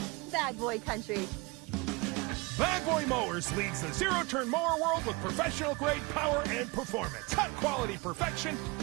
Bad Boy Country. Bad Boy Mowers leads the zero-turn mower world with professional-grade power and performance, cut-quality perfection,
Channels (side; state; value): left; quieter; 26.1 dB